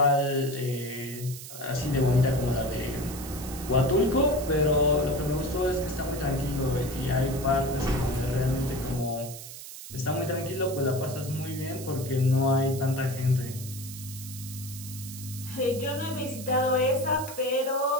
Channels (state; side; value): noise; right; hiss, 12 dB below the sound